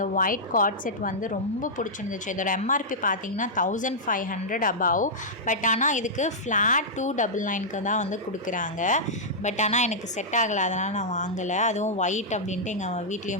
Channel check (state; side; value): normal; both; correlation -0.10